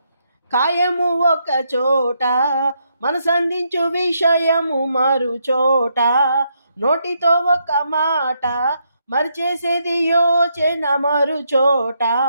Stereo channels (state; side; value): inverted; both; correlation -0.78